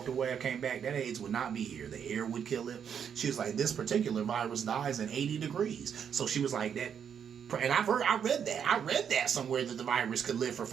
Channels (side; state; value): left; quieter; 7.9 dB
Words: away, I came back, that AIDS would not be here. The air would kill it. She was like, this particular virus dies in 80 degrees. So she was like, that. And I read that somewhere that the virus could live for